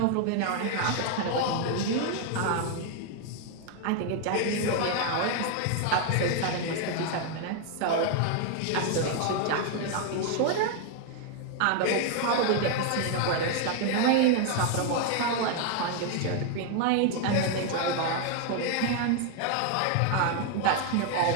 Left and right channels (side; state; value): both; different; correlation 0.00